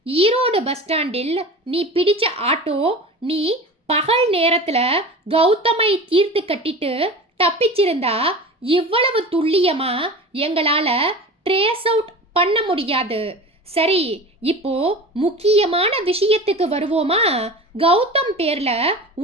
Erode bus ஸ்டாண்டில் நீ பிடிச்ச ஆட்டோ. நீ பகல் நேரத்துல கௌதமை தீர்த்து கட்டிட்டு தப்பிச்சிருந்தா இவ்வளவு துல்லியமா எங்களால ட்ரேஸ் அவுட் பண்ண முடியாது. சரி, இப்போ முக்கியமான விஷயத்துக்கு வருவோமா? கௌதம் பேர்ல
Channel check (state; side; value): normal; both; correlation 0.34